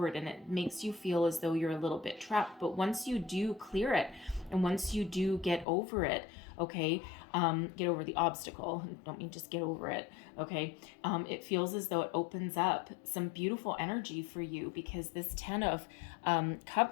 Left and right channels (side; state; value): right; drops out; at 5.7 s